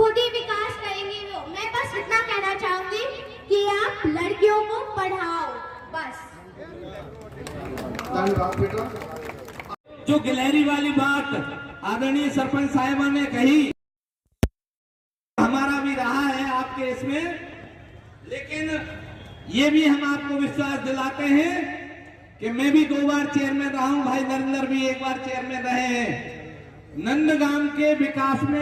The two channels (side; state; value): both; identical; correlation 1.00